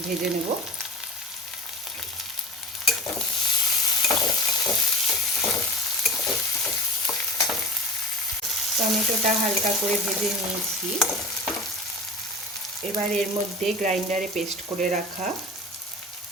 ভেজে নেব। টমেটোটা হালকা করে ভেজে নিয়েছি। এবার এর মধ্যে গ্রাইন্ডারে পেস্ট করে রাখা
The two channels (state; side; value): normal; both; correlation 0.33